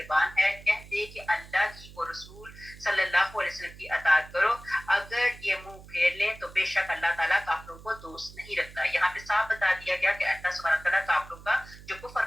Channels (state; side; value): noise; right; hum, 18 dB below the sound